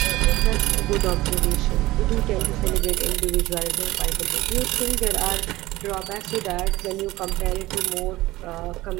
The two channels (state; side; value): quieter; left; 18.3 dB